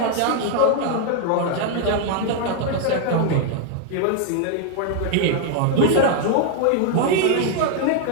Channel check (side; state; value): both; different; correlation 0.00